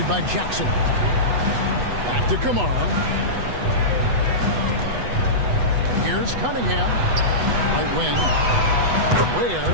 by Jackson. Back to Kamara. Here's Cunningham. Right wing. Where?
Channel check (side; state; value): left; late; 8.1 ms